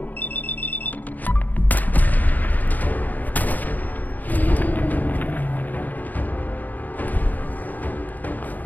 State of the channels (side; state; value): right; late; 0.083 ms